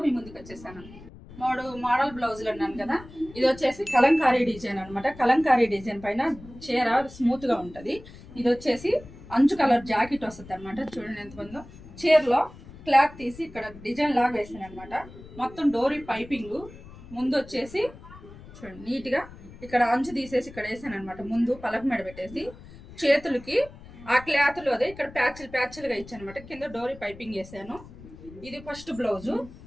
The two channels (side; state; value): left; noise; rumble, 18 dB below the sound